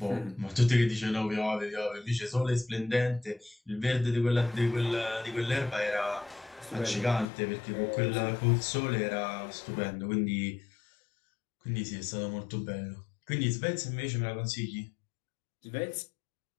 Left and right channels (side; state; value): right; drops out; at 7.2 s